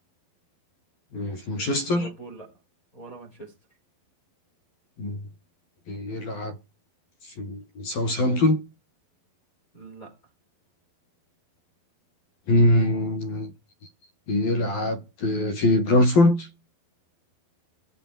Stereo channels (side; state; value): right; late; 12 ms